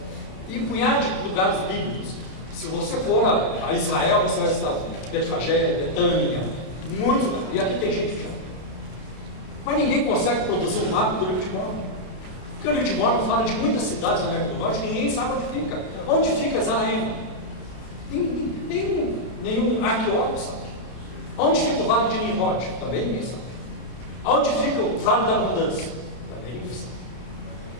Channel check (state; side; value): late; right; 32 ms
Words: e um punhado de lugares bíblicos. Se você for a Israel, você vai visitar Betfagé, Betânia, muito, e aqui tem gente que já. Mas ninguém consegue produzir um mapa do livro de Mórmon, porque o livro de Mórmon fala de muitas cidades na América do Norte que ninguém sabe onde fica. Onde fica Zaraema? Nenhum arqueólogo sabe. Onde fica o Vale de Nimrod? Também ninguém sabe. Onde fica o Vale da Abundância? Também ninguém sabe.